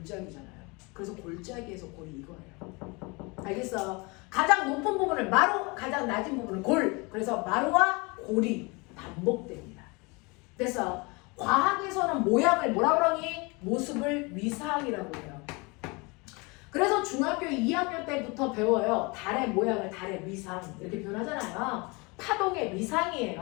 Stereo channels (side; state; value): right; quieter; 27.6 dB